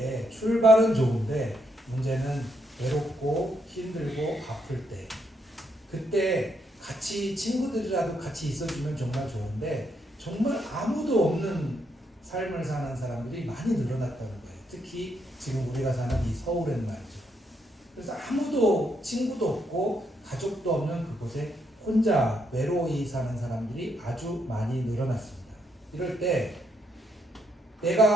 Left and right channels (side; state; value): both; normal; correlation 0.76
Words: 출발은 좋은데 문제는 외롭고 힘들고 아플 때 그때 같이 친구들이라도 같이 있어주면 정말 좋은데 정말 아무도 없는 삶을 사는 사람들이 많이 늘어났다는 거예요. 특히 지금 우리가 사는 이 서울엔 말이죠. 그래서 아무도 친구도 없고 가족도 없는 그곳에 혼자 외로이 사는 사람들이 아주 많이 늘어났습니다. 이럴 때